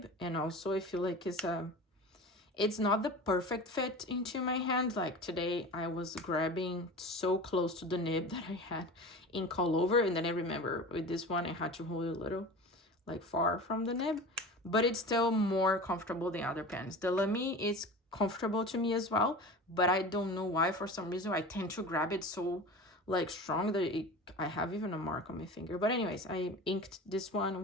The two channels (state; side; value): normal; both; correlation 0.34